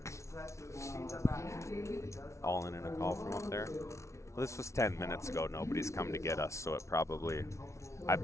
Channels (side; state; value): right; late; 0.14 ms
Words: All in a call from up there. Well, this was 10 minutes ago. Nobody's come to get us, so it probably. I